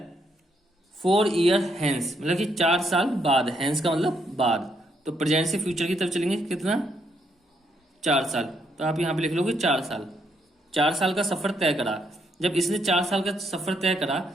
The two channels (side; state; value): both; normal; correlation 0.75